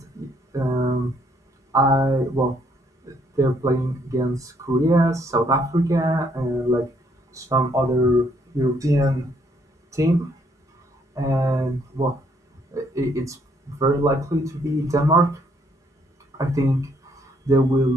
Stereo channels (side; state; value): both; normal; correlation 0.68